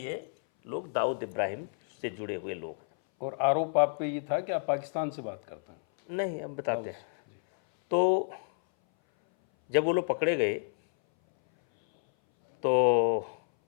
लोग दाऊद इब्राहिम से जुड़े हुए लोग हैं। और आरोप आप पे ये था कि आप पाकिस्तान से बात करते हैं? नहीं, अब बताते हैं। तो जब वो लोग पकड़े गए तो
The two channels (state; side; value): silent; right; 58 dB below the other